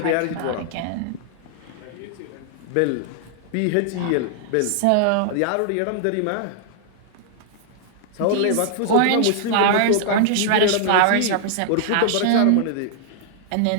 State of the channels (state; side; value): different; both; correlation -0.01